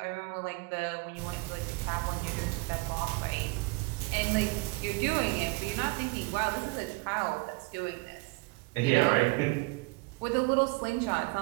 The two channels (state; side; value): quieter; left; 25.5 dB